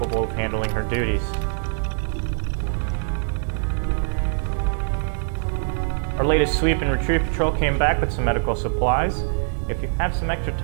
of handling her duties. Our latest sweep and retrieve patrol came back with some medical supplies. If you have some extra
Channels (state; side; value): silent; left; digital silence